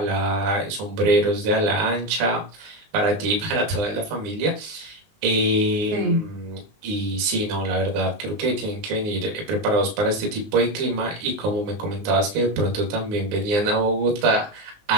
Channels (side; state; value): left; late; 19 ms